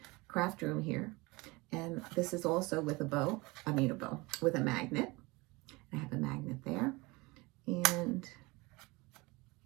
craft room here. And this is also with with a magnet. I have a magnet there. And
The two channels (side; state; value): left; quieter; 24.0 dB